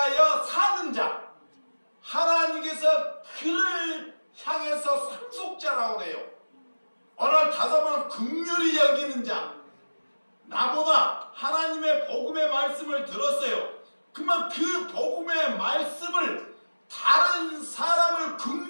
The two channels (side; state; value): both; inverted; correlation -1.00